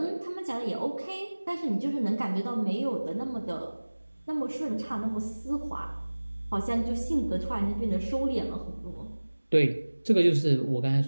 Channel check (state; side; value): inverted; both; correlation -1.00